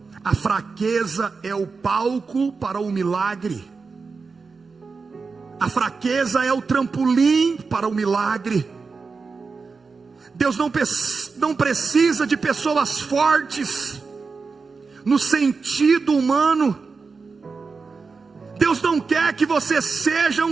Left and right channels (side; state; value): left; quieter; 4.7 dB